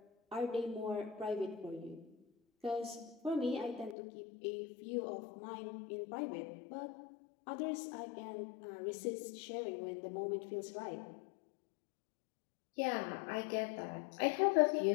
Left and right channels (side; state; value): right; drops out; at 4.0 s